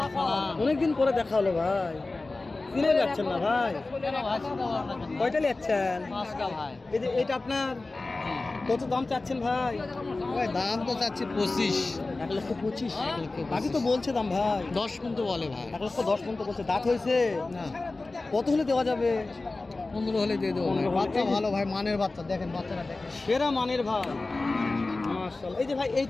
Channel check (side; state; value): right; quieter; 3.3 dB